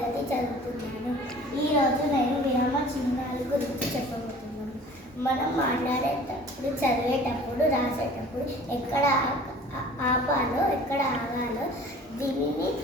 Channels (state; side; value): normal; both; correlation 0.47